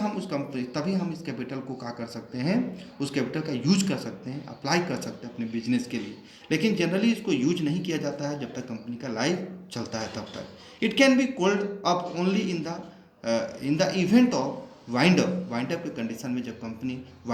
इस कैपिटल को क्या कर सकते हैं, उस कैपिटल का यूज कर सकते हैं, अप्लाई कर सकते हैं अपने बिजनेस के लिए। लेकिन जनरली इसको यूज नहीं किया जाता है जब तक कंपनी का लाइफ चलता है तब तक। It can be called up only in the event of wind up के कंडीशन में, जब कंपनी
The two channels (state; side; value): identical; both; correlation 1.00